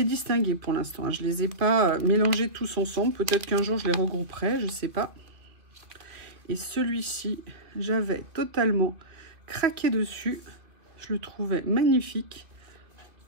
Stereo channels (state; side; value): late; left; 2.3 ms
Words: distingués pour l'instant, hein. Je ne les ai pas mélangés tous ensemble. Peut-être qu'un jour, je les regrouperai, je ne sais pas. Et celui-ci, j'avais totalement craqué dessus. Je le trouvais magnifique.